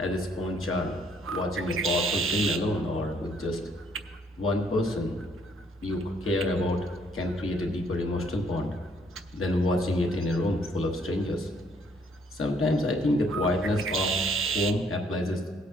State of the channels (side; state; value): both; normal; correlation 0.65